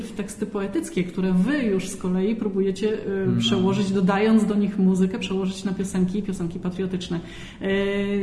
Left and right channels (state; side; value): identical; both; correlation 1.00